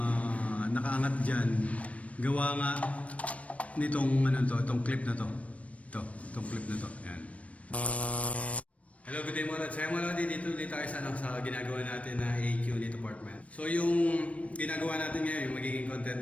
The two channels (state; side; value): late; right; 0.065 ms